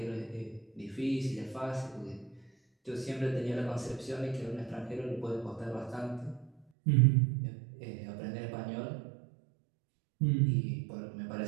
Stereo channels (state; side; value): drops out; left; at 6.7 s